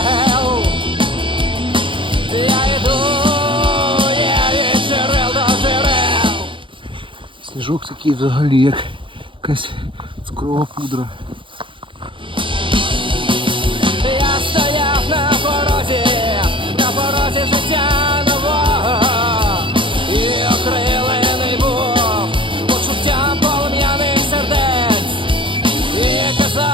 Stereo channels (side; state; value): left; late; 0.25 ms